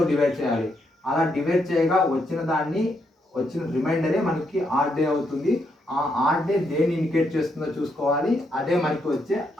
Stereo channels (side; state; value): both; normal; correlation 0.78